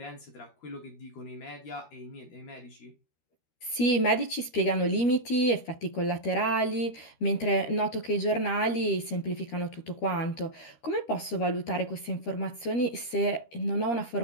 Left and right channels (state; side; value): late; right; 13 ms